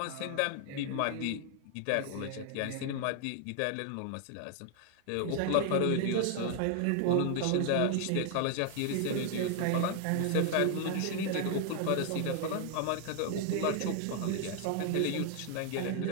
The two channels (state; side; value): different; both; correlation 0.00